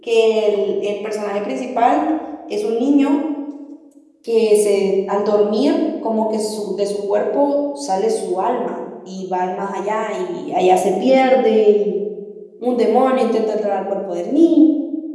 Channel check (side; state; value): both; identical; correlation 1.00